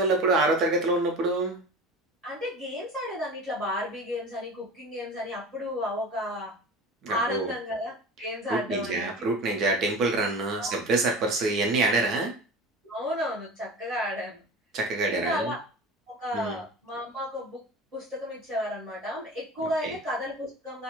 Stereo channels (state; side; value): normal; both; correlation 0.34